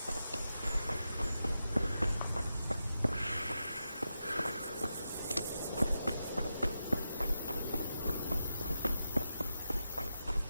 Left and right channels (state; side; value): inverted; both; correlation -0.89